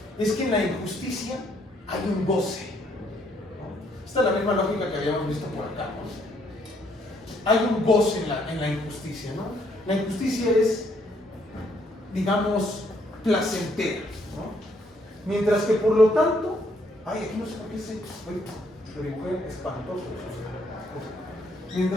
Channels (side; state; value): both; normal; correlation 0.69